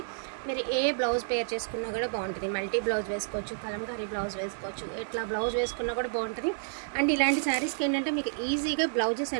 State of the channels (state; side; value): silent; left; 58 dB below the other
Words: మీరు ఏ బ్లౌజ్ పేర్ చేసుకున్నా కూడా బాగుంటుంది. మల్టీ బ్లౌజ్ వేసుకోవచ్చు, కలంకారీ బ్లౌజ్ వేసుకోవచ్చు, ఎట్లా బ్లౌజ్ వేసుకున్నా కూడా బాగుంటుంది. అండ్ ఇలాంటి శారీస్కి ఏంటంటే మీకు ఈజీగా బ్లౌజెస్